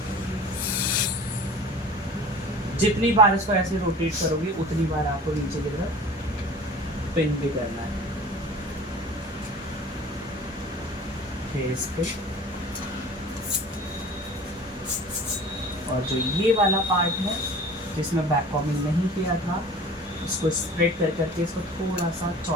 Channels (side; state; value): both; normal; correlation 0.42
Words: जितनी बार इसको ऐसे रोटेट करोगे उतनी बार आपको नीचे की तरफ पिन भी करना है। फेस पे और जो ये वाला पार्ट है जिसमें बैक कॉमिंग नहीं किया था इसको स्प्रेड कर करके इसको थोड़ा सा